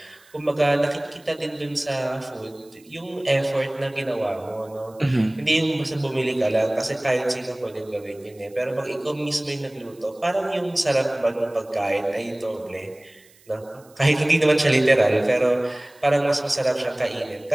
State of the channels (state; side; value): noise; right; hiss, 29 dB below the sound